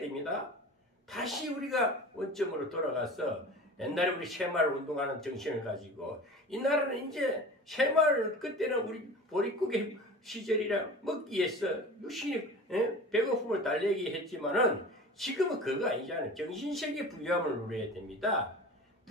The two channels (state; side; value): normal; both; correlation 0.37